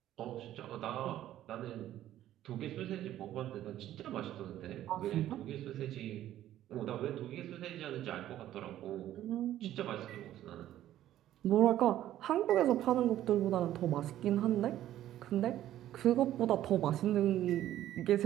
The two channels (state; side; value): quieter; left; 12.8 dB